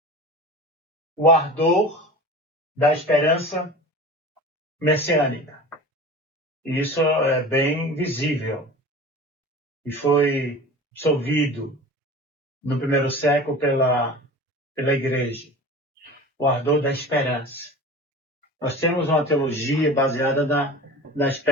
ardor da esperança messiânica. E isso é bem visível. E foi absolvido no primeiro século pela igreja. O ardor da esperança. Nós temos uma teologia baseada na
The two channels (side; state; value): both; normal; correlation 0.36